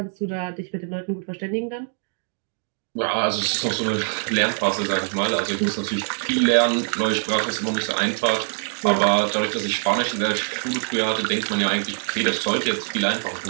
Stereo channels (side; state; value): left; silent; digital silence